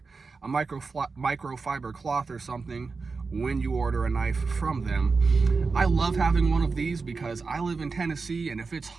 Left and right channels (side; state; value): left; quieter; 4.4 dB